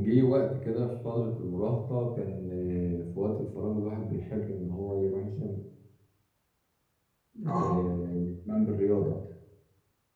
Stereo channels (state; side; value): identical; both; correlation 1.00